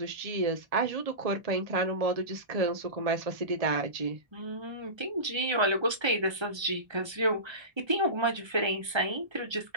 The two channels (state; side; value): late; left; 1.3 ms